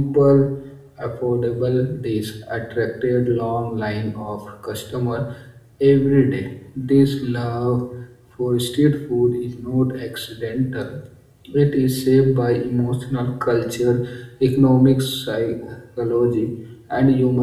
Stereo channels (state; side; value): identical; both; correlation 1.00